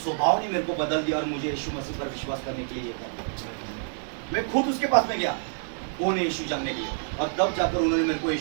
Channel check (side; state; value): left; silent; digital silence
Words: स्वभाव ने मेरे को बदल दिया और मुझे यीशु मसीह पर विश्वास करने के लिए ये कर। मैं खुद उसके पास में गया, कौन है यीशु जानने के लिए, और तब जाकर उन्होंने मेरे को